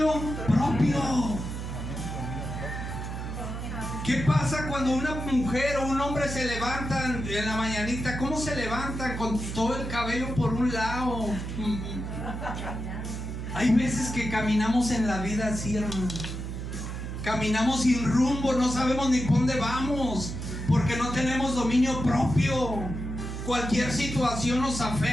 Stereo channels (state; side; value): noise; right; hum, 6 dB below the sound